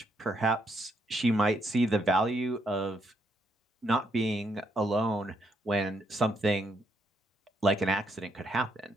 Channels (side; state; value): both; normal; correlation 0.76